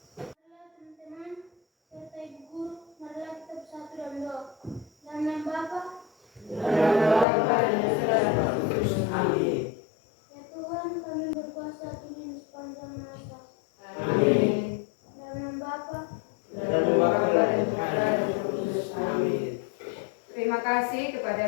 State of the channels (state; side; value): drops out; right; at 7.2 s